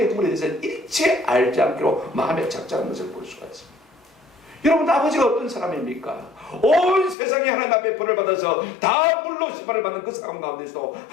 허물에 대해서 일체 알지 않기로 마음에 작작한 것을 볼 수가 있습니다. 여러분, 아버지가 어떤 사람입니까? 온 세상이 하나님 앞에 벌을 받아서 다 물로 심판을 받는 그 상황 가운데서도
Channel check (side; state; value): right; drops out; at 7.2 s